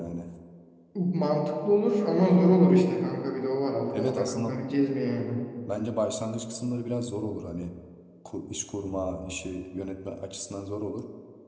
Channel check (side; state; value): both; identical; correlation 1.00